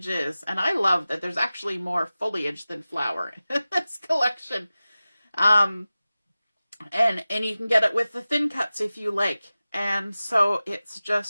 And I love that there's actually more foliage than flower in this collection. And you can get it with the thin cuts if you like. And so it's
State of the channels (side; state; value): both; inverted; correlation -0.96